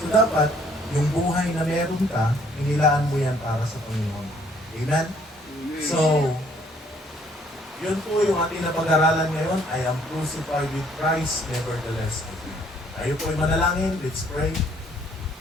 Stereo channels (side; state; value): both; normal; correlation 0.63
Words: So dapat, yung buhay na meron ka, inilaan mo yan para sa Panginoon. Amen? So, yun po yung ating napag-aralan ngayon. I am crucified with Christ, nevertheless I live. Tayo po ay manalangin. Let's pray.